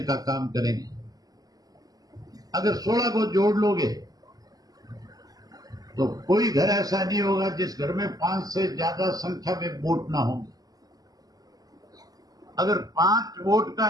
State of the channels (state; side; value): late; left; 0.18 ms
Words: का काम करेंगे। अगर 16 को जोड़ लोगे तो कोई घर ऐसा नहीं होगा जिस घर में 5 से ज्यादा संख्या में वोट ना होंगे। अगर 5 वोट का